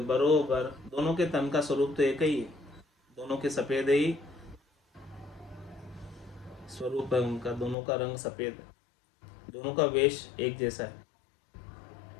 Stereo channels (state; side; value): drops out; right; at 7.8 s